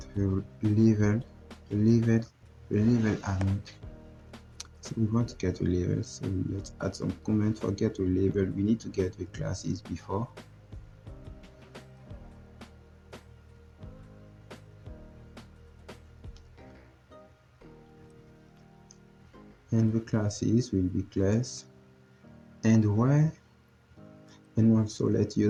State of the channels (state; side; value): identical; both; correlation 1.00